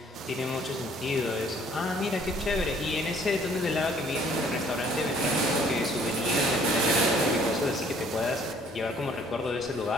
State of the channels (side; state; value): both; normal; correlation 0.59